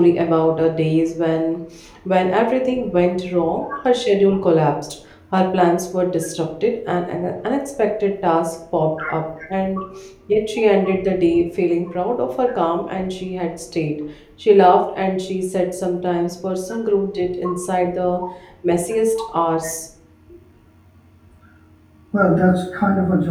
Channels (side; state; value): both; identical; correlation 1.00